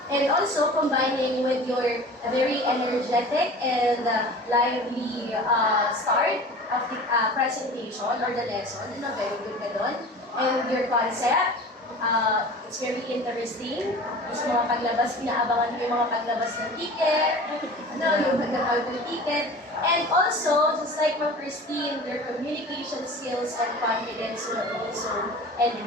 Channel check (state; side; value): normal; both; correlation 0.39